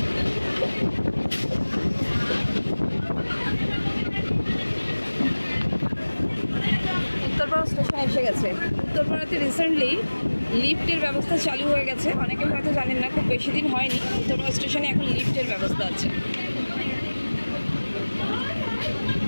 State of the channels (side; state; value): both; inverted; correlation -1.00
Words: উত্তরপাড়া স্টেশনে এসে গেছে। উত্তরপাড়াতে রিসেন্টলি লিফটের ব্যবস্থা চালু হয়ে গেছে, অনেকে হয়তো জানেন না, খুব বেশি দিন হয়নি। উত্তরপাড়া স্টেশনে এখন লিফটের ব্যবস্থা আছে।